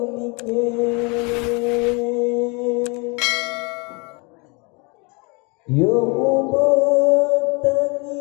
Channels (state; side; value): quieter; right; 30.1 dB